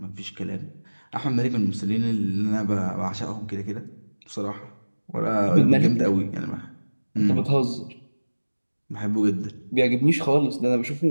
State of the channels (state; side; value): inverted; both; correlation -1.00